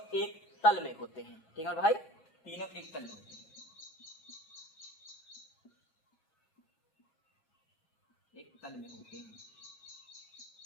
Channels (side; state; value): right; late; 7.2 ms